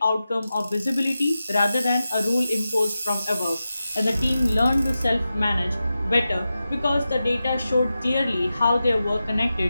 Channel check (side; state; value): both; inverted; correlation -0.92